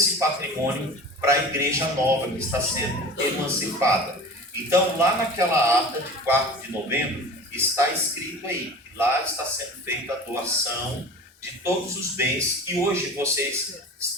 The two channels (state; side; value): normal; both; correlation 0.37